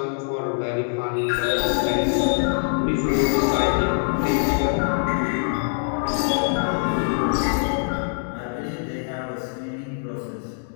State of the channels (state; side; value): silent; right; digital silence